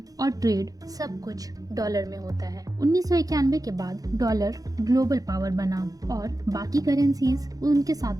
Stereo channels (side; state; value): left; late; 0.17 ms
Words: और ट्रेड सब कुछ डॉलर में होता है। 1991 के बाद डॉलर ग्लोबल पावर बना और बाकी करेंसीज उनके साथ